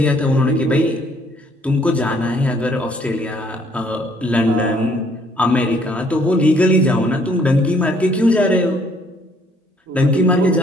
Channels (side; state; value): both; normal; correlation 0.63